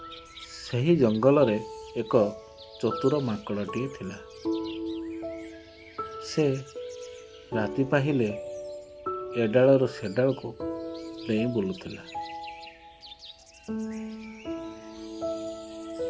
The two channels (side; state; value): both; identical; correlation 1.00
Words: ସେହି ଜଙ୍ଗଲରେ ଏକ ଚତୁର ମାଙ୍କଡ଼ଟିଏ ଥିଲା। ସେ ରାତି ପାହିଲେ ଏ ଡାଳରୁ ସେ ଡାଳକୁ ଡେଇଁ ବୁଲୁଥିଲା।